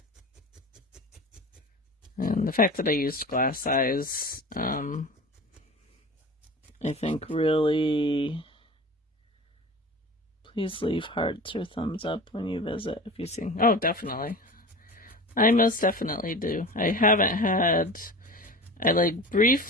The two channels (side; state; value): both; normal; correlation 0.35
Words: And the fact that I used glass eyes, I think really, please leave hearts or thumbs up when you visit if you see. Oh, definitely. I most definitely do. I haven't had, I like